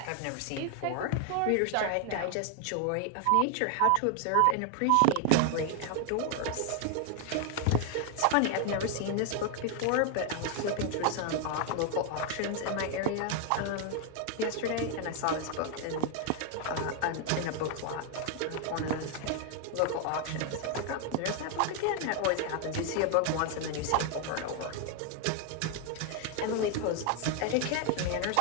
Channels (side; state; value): both; different; correlation 0.01